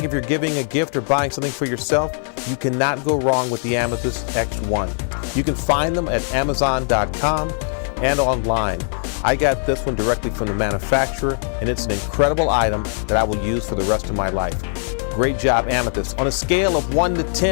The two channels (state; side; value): silent; right; 64 dB below the other